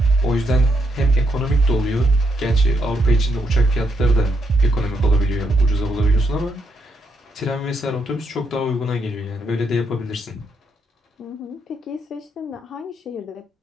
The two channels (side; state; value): both; normal; correlation 0.77